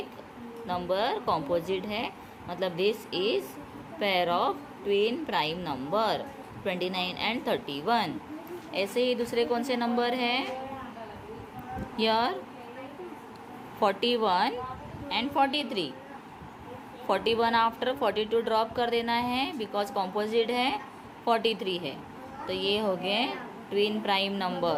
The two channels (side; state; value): both; identical; correlation 1.00